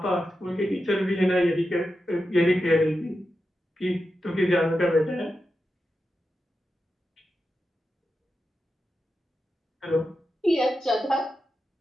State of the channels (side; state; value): both; normal; correlation 0.89